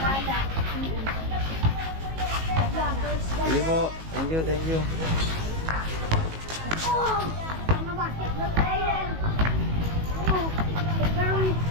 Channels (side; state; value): left; late; 19 ms